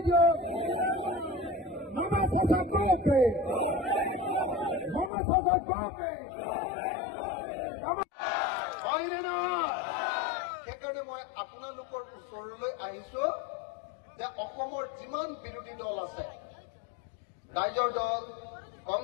मामा शासक पे मामा शासक पे হয়নে নহয় সেইকাৰণে মই আপোনালোকৰ ওচৰলৈ আহিছো যে অসমৰ যিমান বিৰোধী দল আছে ৰাইজৰ দল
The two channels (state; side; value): drops out; right; at 5.1 s